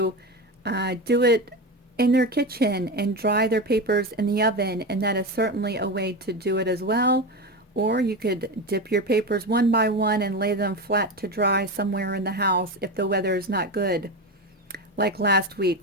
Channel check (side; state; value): both; normal; correlation 0.20